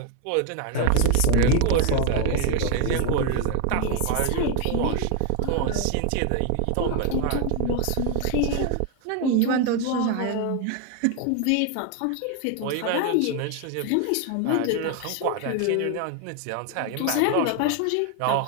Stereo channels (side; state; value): both; different; correlation 0.01